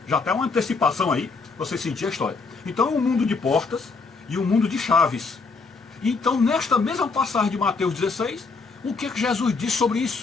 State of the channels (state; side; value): quieter; right; 4.4 dB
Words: Já tem uma antecipação aí, você sentir a história. Então é um mundo de portas e um mundo de chaves. Então nesta mesma passagem de Mateus 16, o que Jesus disse sobre